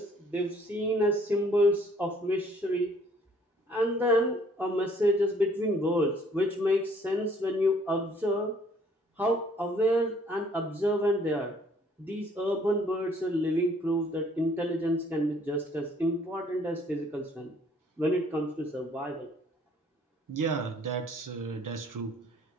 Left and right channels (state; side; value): normal; both; correlation 0.60